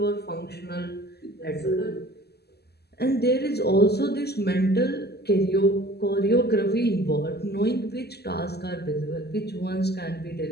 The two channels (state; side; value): late; right; 0.47 ms